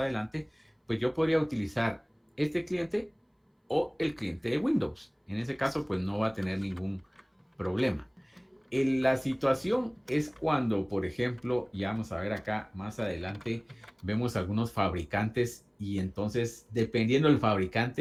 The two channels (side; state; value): both; identical; correlation 1.00